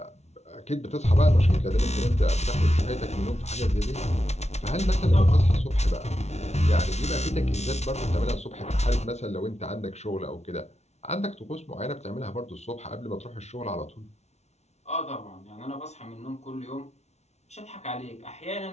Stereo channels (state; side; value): late; right; 0.32 ms